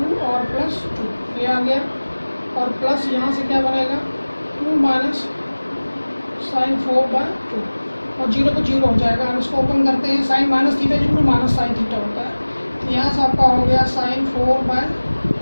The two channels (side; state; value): both; inverted; correlation -1.00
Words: और प्लस 2 ये आ गया, और प्लस यहाँ से क्या बनेगा 2 माइनस sin 4/2 और 0 को 0 हो जाएगा। हम इसको ओपन करते हैं, साइन माइनस थीटा जो माइनस साइन थीटा होता है। तो यहाँ से आपका हो गया sin 4/2